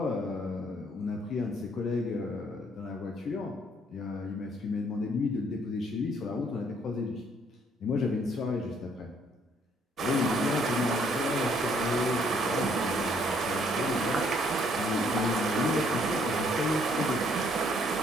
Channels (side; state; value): both; normal; correlation 0.66